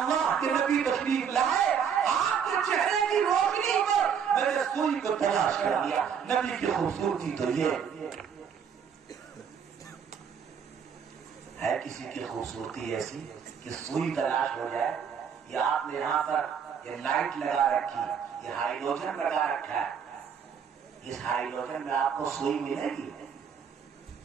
کے نبی تشریف لائے، آپ کے چہرے کی روشنی پر میں نے سوئی کو تلاش کر لیا. نبی کی خوبصورتی تو یہ ہے. کسی کی خوبصورتی ایسی کہ سوئی تلاش ہو جائے. یا آپ نے یہاں پر یہ لائٹ لگا رکھی، یہ ہائیڈروجن لگا رکھا ہے، اس ہائیڈروجن میں آپ کو سوئی ملے گی؟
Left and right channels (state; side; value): quieter; left; 7.4 dB